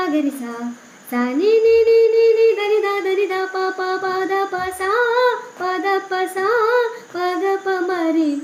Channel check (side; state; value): both; identical; correlation 1.00